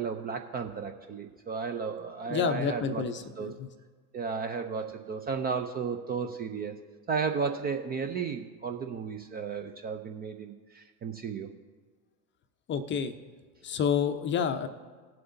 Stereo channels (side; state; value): both; normal; correlation 0.08